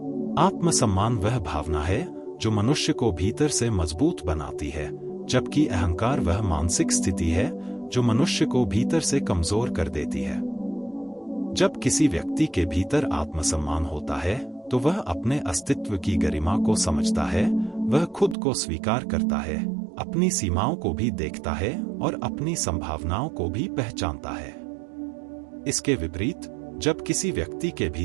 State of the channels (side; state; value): left; drops out; at 18.4 s